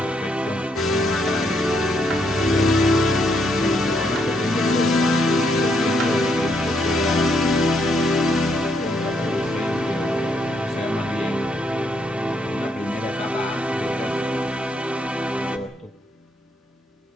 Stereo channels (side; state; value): both; normal; correlation 0.75